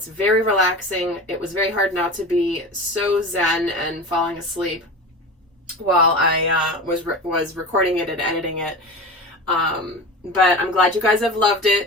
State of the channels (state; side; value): normal; both; correlation 0.31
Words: very relaxing. It was very hard not to be so zen and falling asleep while I was recording it and editing it. But I'm glad you guys have loved